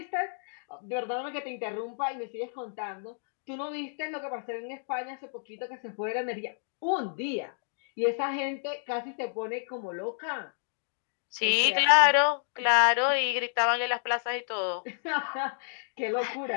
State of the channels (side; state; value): right; silent; digital silence